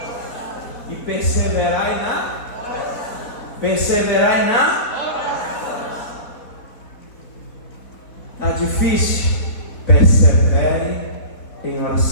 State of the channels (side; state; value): right; late; 4.0 ms